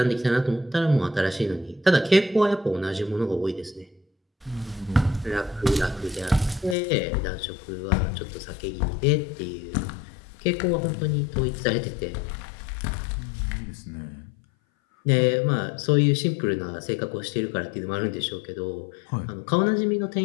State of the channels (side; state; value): right; drops out; at 6.8 s